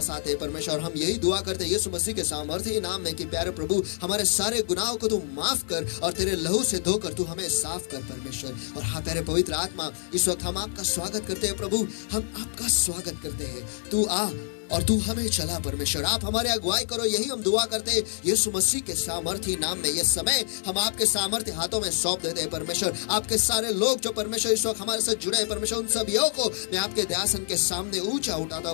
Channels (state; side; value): silent; right; 60 dB below the other